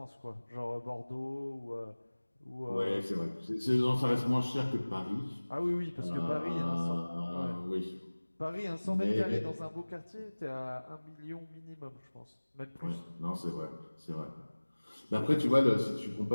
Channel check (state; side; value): inverted; both; correlation -1.00